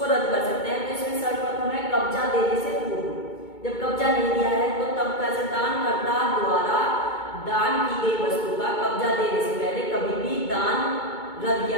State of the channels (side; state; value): right; late; 2.2 ms